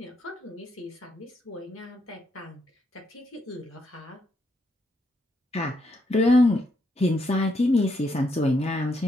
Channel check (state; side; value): normal; both; correlation 0.77